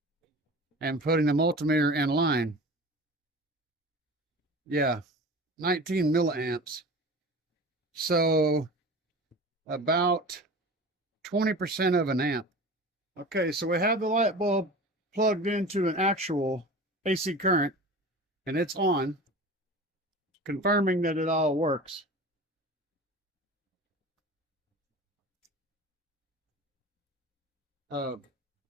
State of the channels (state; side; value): normal; both; correlation 0.36